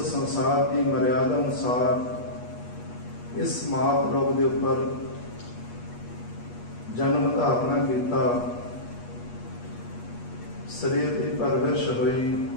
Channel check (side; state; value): right; late; 8.3 ms